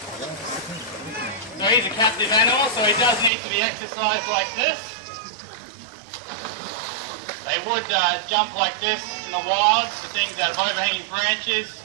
So he's a captive animal, so he does need to be exercised like this. They would jump like this in the wild, the things that have overhanging branches.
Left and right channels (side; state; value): left; drops out; at 3.3 s